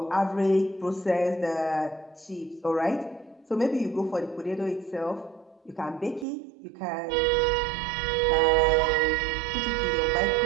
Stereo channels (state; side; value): drops out; left; at 6.2 s